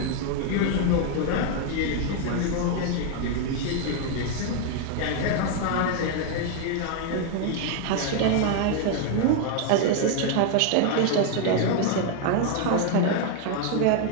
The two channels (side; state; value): both; different; correlation 0.01